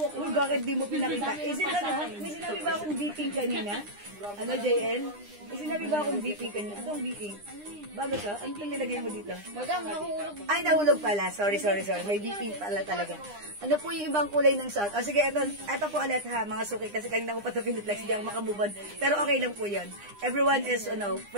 Uy, bakit di mo pinakita? May sinabi ba akong beeping kanina? JL? May sinabi ba akong beeping kanina? Anong beeping? Bago to? Ano itong nilagay mo dito? Madam, nahulog. Ay, nahulog pala. Sorry. May BP pala talaga. Ano po yung ibang kulay ng suot? O sige, eto po ulit ha, mga suki. Kasi kanina ko pa ito piniplex, hindi ako makamove on. Pero okay lang po yun. Everyone is,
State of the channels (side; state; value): left; late; 9.9 ms